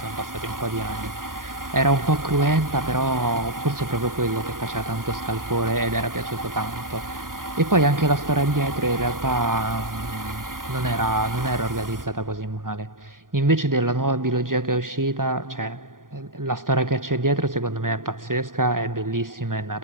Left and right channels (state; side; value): late; left; 0.90 ms